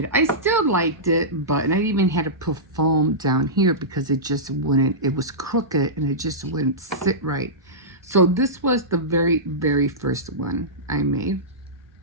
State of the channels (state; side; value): normal; both; correlation -0.16